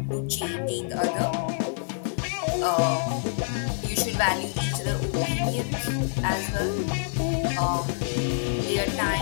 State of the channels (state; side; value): silent; right; digital silence